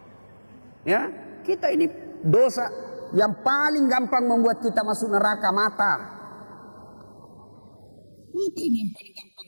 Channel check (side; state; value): both; inverted; correlation -1.00